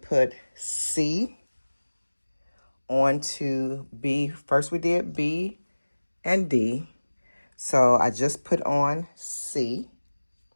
put C onto B. First we did B and D. So I just put on C.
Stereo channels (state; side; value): inverted; both; correlation -1.00